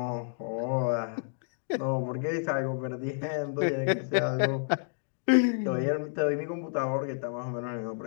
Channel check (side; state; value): right; silent; digital silence